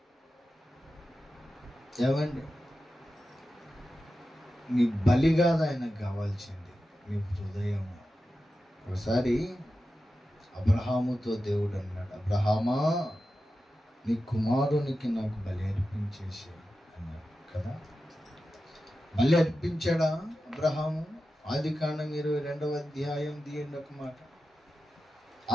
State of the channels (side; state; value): both; normal; correlation 0.92